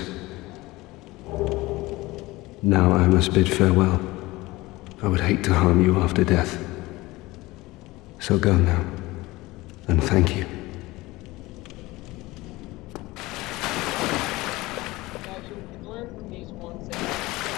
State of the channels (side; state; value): right; quieter; 20.3 dB